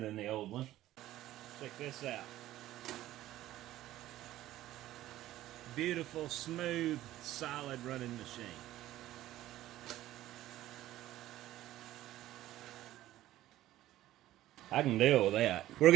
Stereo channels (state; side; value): quieter; left; 14.5 dB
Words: the old one. Check this out. Beautiful, smooth, solid running machine. I can deal with that. We're